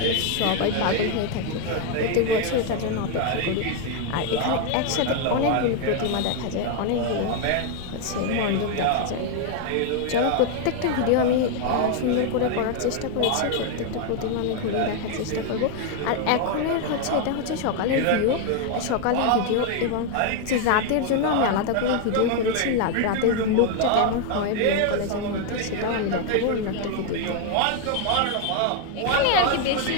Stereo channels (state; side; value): different; both; correlation 0.01